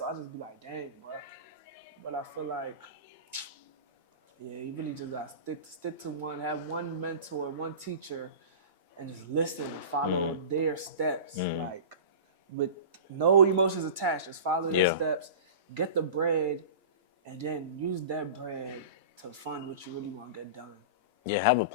I just be like, dang, bro. But I feel like, yeah, you really just got to stick to one, have one mentor, one teacher, and just listen and follow their steps. Like, with no emotions attached, just follow their steps, get the bread, and then use that bread to fund what you really want to get done. Yeah, have a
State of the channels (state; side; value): inverted; both; correlation -0.33